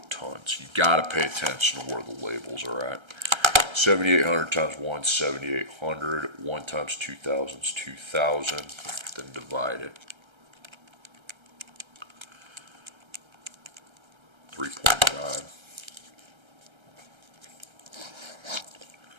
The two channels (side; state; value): left; late; 1.3 ms